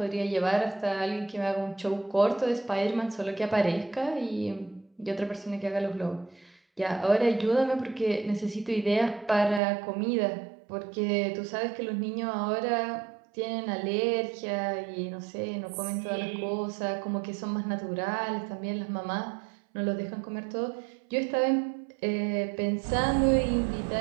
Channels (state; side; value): drops out; left; at 9.6 s